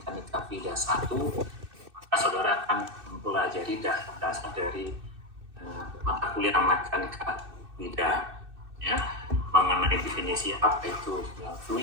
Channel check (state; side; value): late; left; 2.6 ms